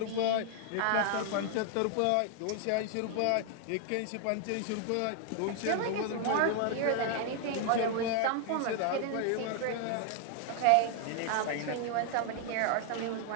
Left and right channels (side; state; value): both; different; correlation 0.00